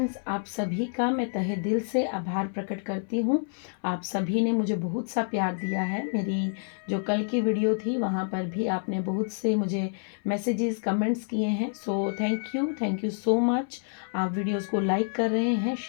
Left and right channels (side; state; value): right; silent; 59 dB below the other